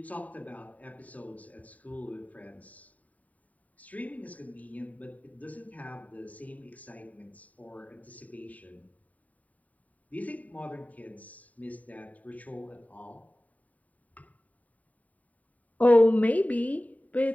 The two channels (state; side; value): late; right; 0.071 ms